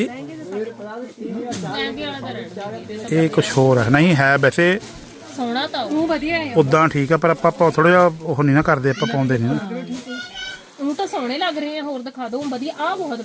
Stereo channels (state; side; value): identical; both; correlation 1.00